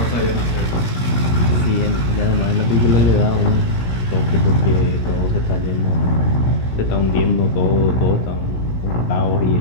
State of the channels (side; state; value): right; late; 17 ms